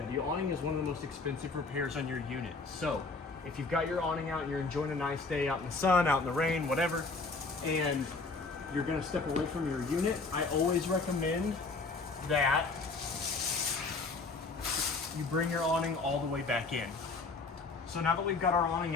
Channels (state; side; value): quieter; right; 3.9 dB